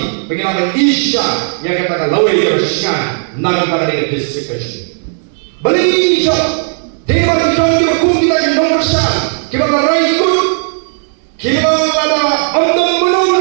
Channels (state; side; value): silent; left; digital silence